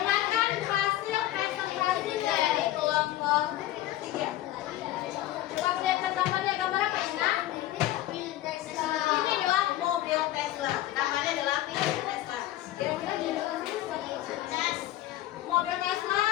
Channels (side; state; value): right; quieter; 14.6 dB